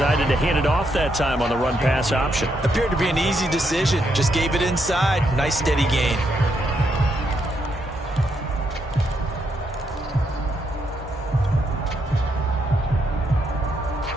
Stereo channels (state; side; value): normal; both; correlation 0.78